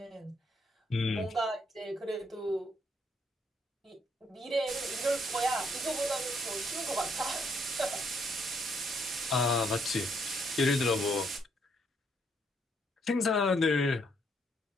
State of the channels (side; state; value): both; normal; correlation 0.72